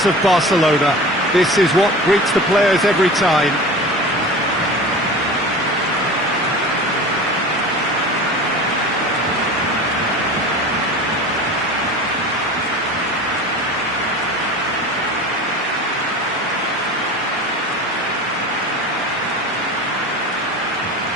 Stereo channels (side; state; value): both; normal; correlation 0.35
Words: of Barcelona. This is what greets the players every time.